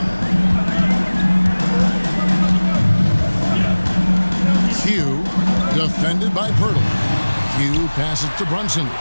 Q. Defended by Pirtle. Q passes to Brunson.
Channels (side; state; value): both; inverted; correlation -1.00